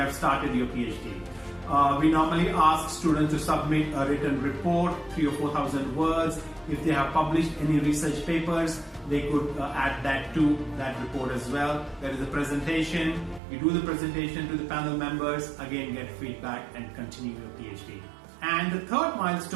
started your PhD. We normally ask students to submit a written report, 3,000 or 4,000 words. If they have published any research papers, they could add that to that report as well. There is a presentation. You do the presentation to the panel members, again get feedback and continue your PhD. And the third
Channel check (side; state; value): left; drops out; at 13.4 s